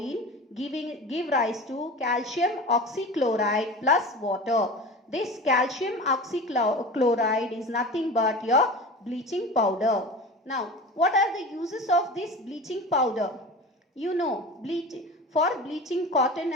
give rise to calcium oxychloride plus water. This calcium oxychloride is nothing but your bleaching powder. Now, what are the uses of this bleaching powder? You know, for bleaching cotton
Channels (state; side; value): normal; both; correlation 0.34